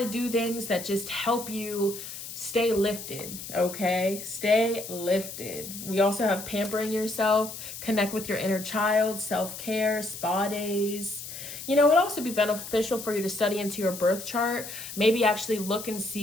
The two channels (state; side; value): noise; left; hiss, 10 dB below the sound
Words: do things that just help you stay lifted, okay? Stay lifted. We also have pampering yourself, connect with your inner child, self-care, spa days. You know, it would also be beneficial for you to study into your birth chart. Maybe actually look and